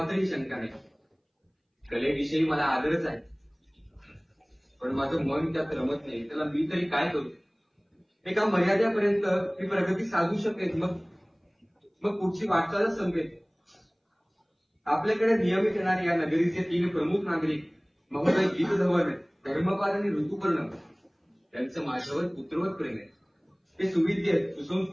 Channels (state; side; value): identical; both; correlation 1.00